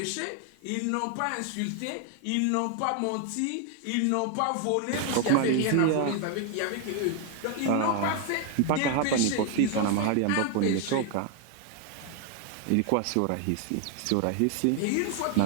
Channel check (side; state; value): both; different; correlation 0.01